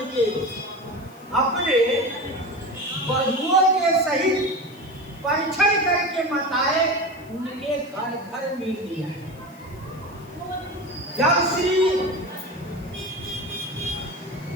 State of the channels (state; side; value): noise; left; hiss, 27 dB below the sound